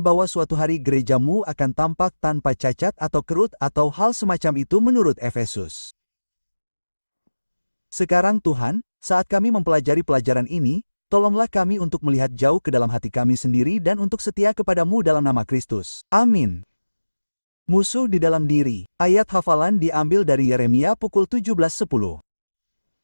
suatu hari gereja-Mu akan tampak tanpa cacat atau kerut atau hal semacam itu menurut Efesus. Sekarang Tuhan, saat kami mempelajari pelajaran ini, tolonglah kami untuk melihat jauh ke dalam hati kami sendiri dan untuk setia kepada-Mu dalam nama Kristus. Amin. Musuh di dalam diri. Ayat hafalan diambil dari Yeremia pukul 17:10.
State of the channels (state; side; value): inverted; both; correlation -1.00